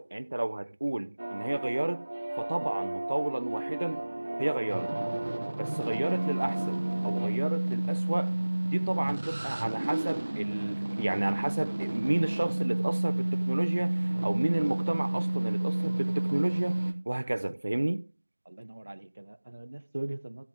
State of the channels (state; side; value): inverted; both; correlation -1.00